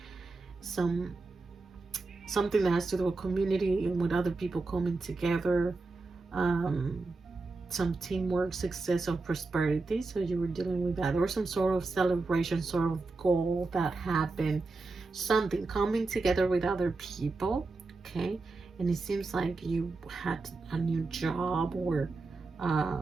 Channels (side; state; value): left; quieter; 3.6 dB